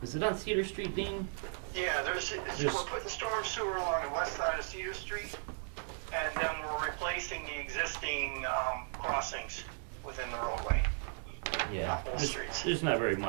is it on Cedar Street, Dean? yeah, we're putting storm sewer along the west side of Cedar Street, and then we're replacing the existing crossings within the roadway. Yeah. Both streets. There's not very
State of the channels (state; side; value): silent; left; 54 dB below the other